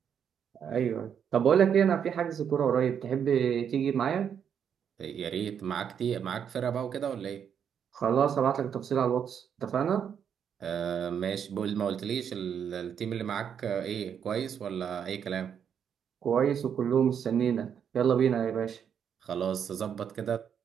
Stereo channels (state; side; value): quieter; left; 8.0 dB